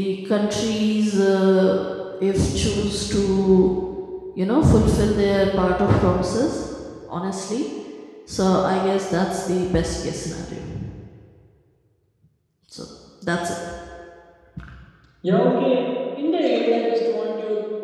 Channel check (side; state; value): both; identical; correlation 1.00